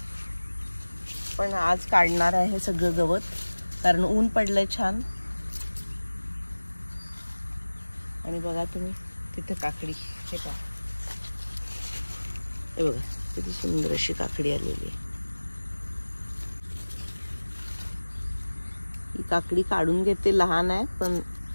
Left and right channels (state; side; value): inverted; both; correlation -1.00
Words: पण आज काढणार आहे सगळं गवत कारण ऊन पडलंय छान. आणि बघा तुम्ही तिथे काकडी, हे पहा, हे बघा किती सुंदर अशी काकडी आलेली आहे. ही काकडी काढून घेते, लहान आहे पण